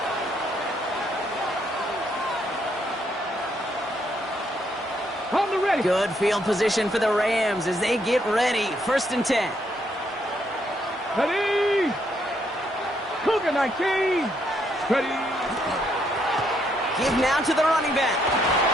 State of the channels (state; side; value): normal; both; correlation 0.74